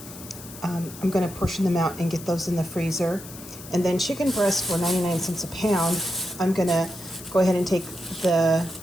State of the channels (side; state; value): left; noise; hiss, 15 dB below the sound